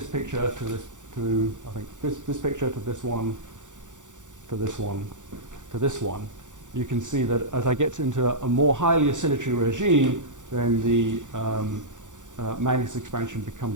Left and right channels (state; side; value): late; left; 0.86 ms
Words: picture to this, to I think this picture to this one, to this one, to this one. You can see that as I get into a more highly oscillatory regime, then the Magnus expansion